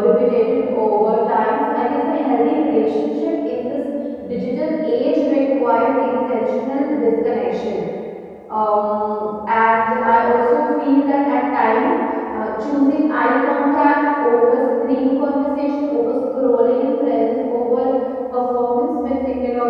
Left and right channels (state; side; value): identical; both; correlation 1.00